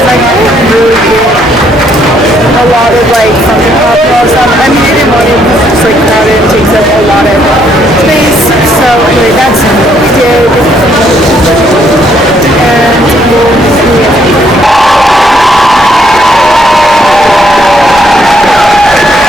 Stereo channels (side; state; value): both; normal; correlation 0.70